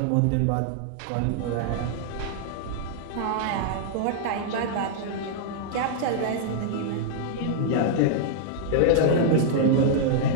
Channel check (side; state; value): both; different; correlation -0.01